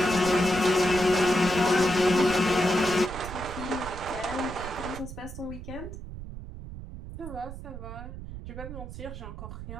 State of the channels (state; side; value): noise; right; rumble, 10 dB below the sound